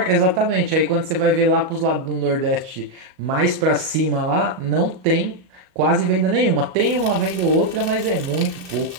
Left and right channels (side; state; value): left; late; 38 ms